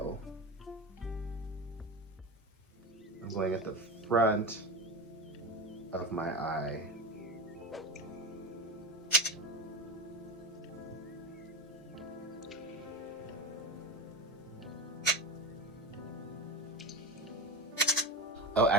I'm going at the front of my eye. Oh,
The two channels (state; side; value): normal; both; correlation 0.23